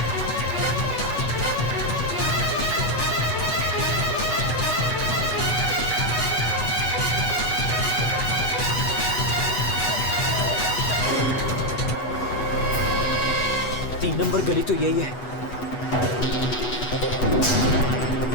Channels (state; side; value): late; right; 8.2 ms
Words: 3 नंबर गली तो यही है।